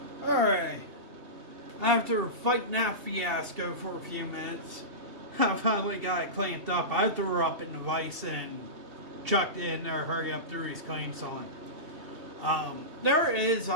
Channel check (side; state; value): left; late; 2.7 ms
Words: Alright. after fighting that fiasco for a few minutes, I finally got it clamped up. I threw her up in the vise and chucked it in there, hurry up through his clamps on. There is